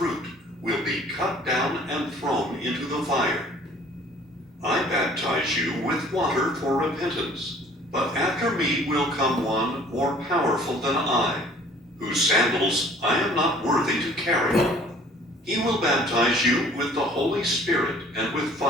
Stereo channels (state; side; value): normal; both; correlation 0.53